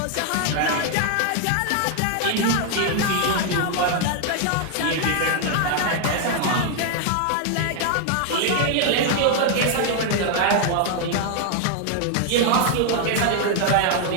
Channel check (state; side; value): different; both; correlation 0.00